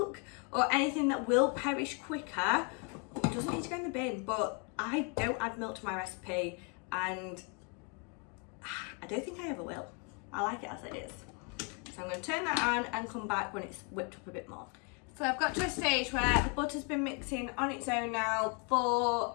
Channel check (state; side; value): quieter; right; 35.4 dB